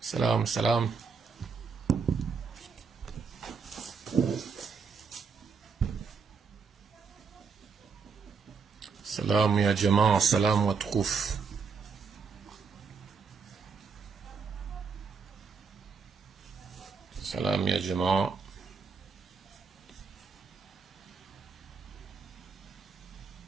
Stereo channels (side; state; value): left; quieter; 5.3 dB